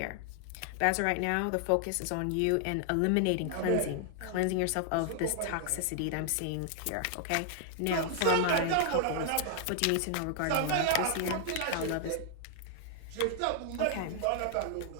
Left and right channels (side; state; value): both; different; correlation 0.00